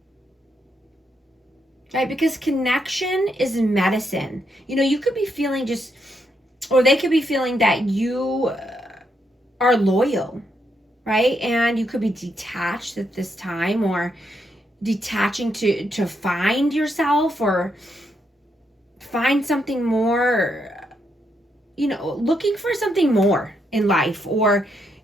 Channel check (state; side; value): normal; both; correlation 0.79